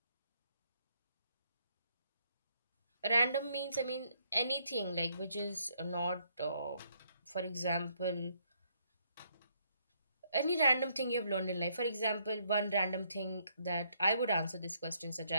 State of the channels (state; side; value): inverted; both; correlation -0.71